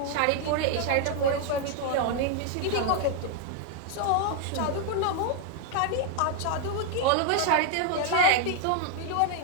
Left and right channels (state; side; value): different; both; correlation 0.00